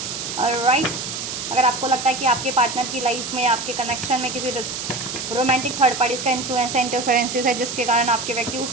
राइट, अगर आपको लगता है कि आपके पार्टनर की लाइफ में, आपके कनेक्शन में किसी रोमांटिक थर्ड पार्टीज़ का इन्फ्लुएंस है, इंटरफेरेंसेस है, जिसके कारण आपके व्यक्ति उस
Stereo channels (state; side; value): noise; right; hiss, 6 dB below the sound